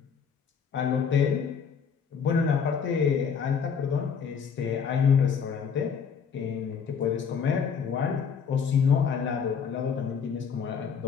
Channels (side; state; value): right; quieter; 6.6 dB